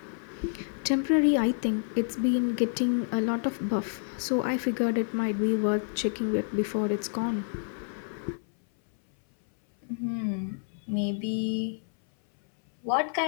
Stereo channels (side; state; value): right; silent; 59 dB below the other